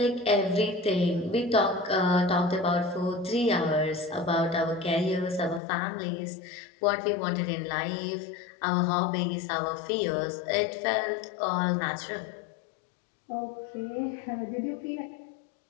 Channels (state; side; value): drops out; right; at 5.6 s